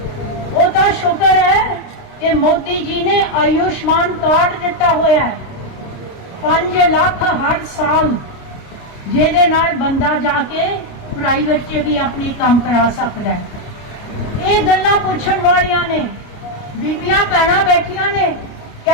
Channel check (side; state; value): right; late; 29 ms